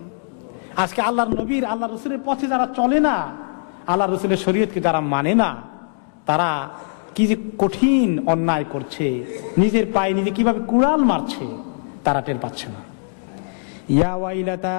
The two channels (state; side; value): silent; right; digital silence